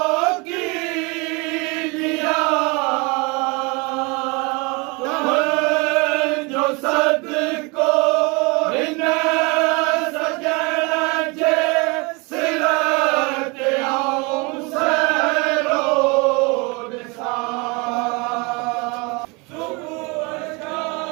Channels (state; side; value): quieter; left; 28.6 dB